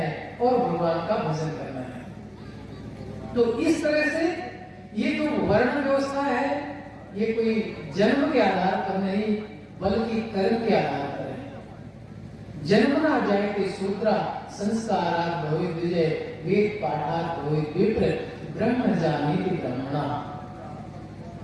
और भगवान का भजन करना है। तो इस तरह से ये जो वर्ण व्यवस्था है, ये कोई जन्म के आधार पर नहीं, बल्कि कर्म के आधार पर है। जन्मना जायते शूद्रा, संस्कारात् भवेत् विजय, वेद पाठात् भवेत् विप्र, ब्रह्म जानीति ब्रह्मणा।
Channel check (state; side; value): identical; both; correlation 1.00